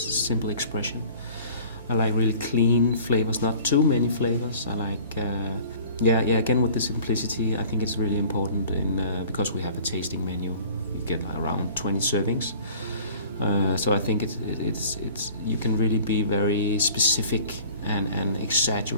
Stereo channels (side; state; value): both; inverted; correlation -0.47